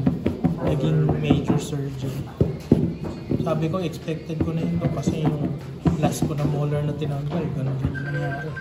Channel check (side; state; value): both; identical; correlation 1.00